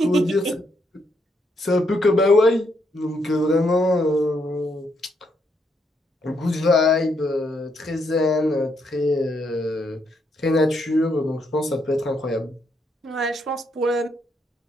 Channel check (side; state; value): both; normal; correlation 0.76